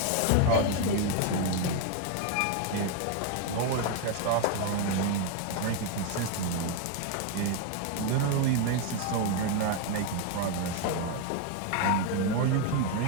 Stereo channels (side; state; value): both; different; correlation 0.01